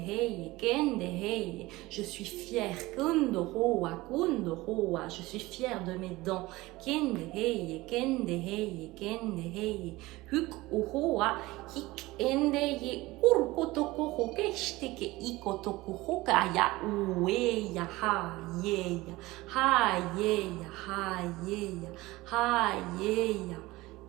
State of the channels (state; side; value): quieter; left; 19.9 dB